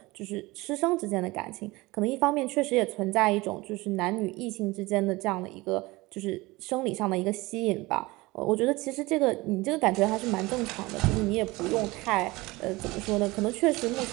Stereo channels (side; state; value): left; quieter; 21.7 dB